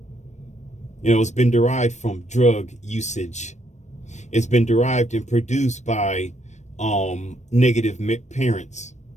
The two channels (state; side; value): late; right; 0.34 ms